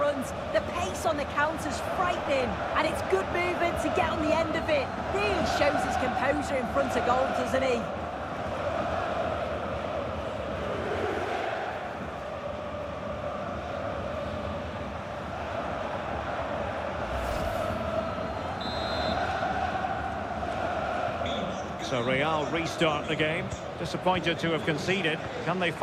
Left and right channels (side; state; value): both; identical; correlation 1.00